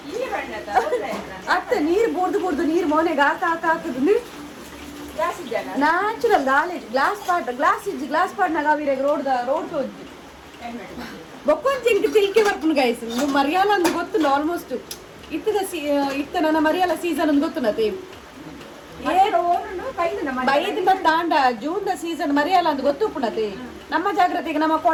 ಅತ್ತ ನೀರು ಬೋರ್ದು ನೀರು ಮೋನೆಗೆ ಹಾಕುದು ನ್ಯಾಚುರಲ್ ಗ್ಲಾಸ್ ಪಾಟ್ನಾಗ ಅವಿರಾಗ ರೋಡ್ ತೋಜಿ ಬೊಕ್ಕೊಂಚಿ ತಿಲ್ಕೆ ಬರ್ಪುನು ಗೈಸ್ ಮರಿಯಾಲ ಅಂದ್ ಗೊತ್ತು ಆಲ್ಮೋಸ್ಟ್ ಇತ್ತ ನನ್ನ ಮರಿಯಾಲ ಸೀಸನ್ ಅಂದ್ ಗೊತ್ತು ನತಿ ಬೈದಿಂದ ತಾಂಡ ಜೂನ್ ಸೀಸನ್ ಮರಿಯಲ್ಲ ಅಂತ ಗೊತ್ತು ಪುಣತಿ ನಮ್ಮ ಜಾಗ್ರತೆಗೆ ನಮ್ಮ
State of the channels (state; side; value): identical; both; correlation 1.00